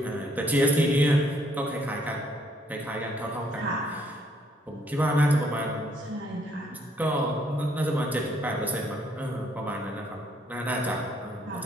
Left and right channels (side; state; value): both; normal; correlation 0.68